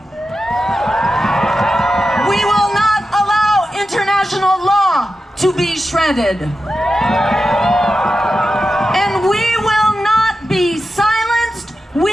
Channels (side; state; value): both; normal; correlation 0.91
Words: We will not allow international law to be shredded. And we will not be silenced.